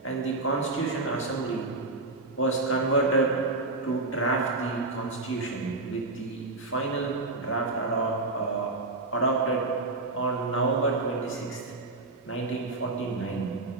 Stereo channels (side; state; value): left; quieter; 3.2 dB